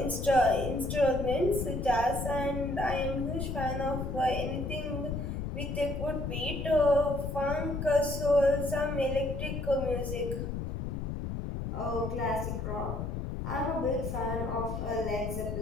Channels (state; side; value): noise; left; rumble, 4 dB below the sound